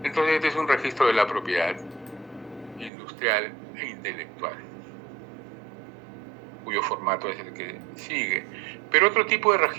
Entonces este es un registro de la propiedad industrial e intelectual, cuyo formato es el que sigue. Pero otro tipo de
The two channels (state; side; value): drops out; left; at 2.9 s